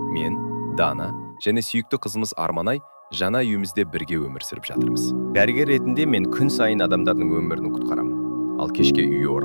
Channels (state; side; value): inverted; both; correlation -1.00